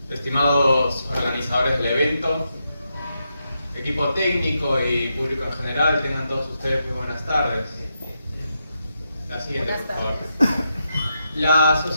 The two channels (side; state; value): both; inverted; correlation -0.84